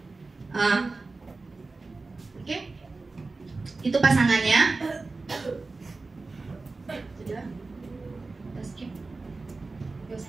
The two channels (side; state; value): left; quieter; 3.7 dB